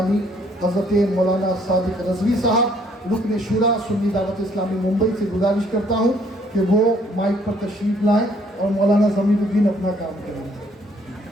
حضرت مولانا صادق رضوی صاحب رکن شورا سنی دعوت اسلامی ممبئی سے گزارش کرتا ہوں کہ وہ مائک پر تشریف لائیں اور مولانا ضمیر الدین اپنا کام کریں۔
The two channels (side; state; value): both; normal; correlation 0.64